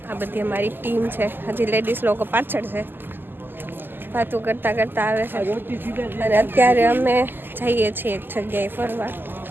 આ બધી અમારી ટીમ છે. હજી લેડીઝ લોકો પાછળ છે, વાતો કરતા કરતા આવે છે. અને અત્યારે અમે જઈએ છીએ એક જગ્યાએ ફરવા.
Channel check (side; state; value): left; late; 0.094 ms